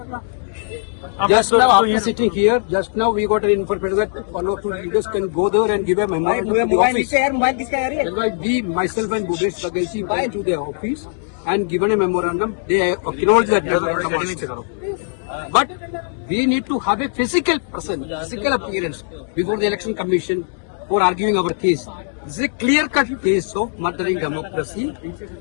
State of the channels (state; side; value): silent; right; digital silence